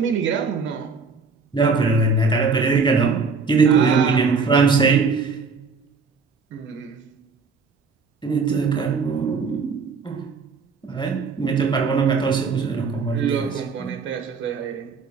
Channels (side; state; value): left; quieter; 4.7 dB